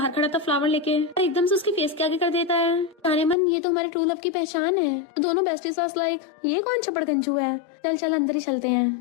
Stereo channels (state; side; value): drops out; right; at 3.4 s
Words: खड़ा था फ्लावर लेके, एकदम से उसके फेस के आगे कर देता है, अरे मन, ये तो हमारे ट्रू लव की पहचान है। तो दोनों बेस्टीज लाइक, ये कौन चपड़गंजू है, चल चल अंदर ही चलते